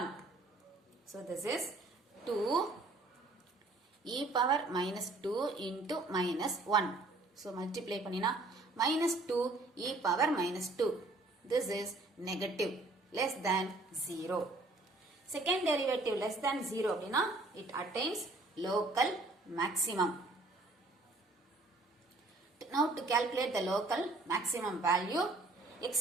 So this is 2 e power minus 2 into minus 1. So multiply பண்ணினா minus 2 e power minus 2. This is negative, less than 0. Second derivative less than 0 அப்படினா it attains local maximum. Now to calculate the local maximum value, x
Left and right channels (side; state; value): left; quieter; 3.1 dB